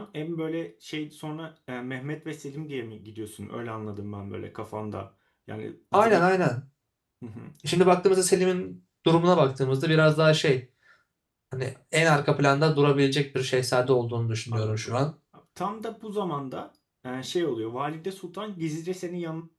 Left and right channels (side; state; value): both; identical; correlation 1.00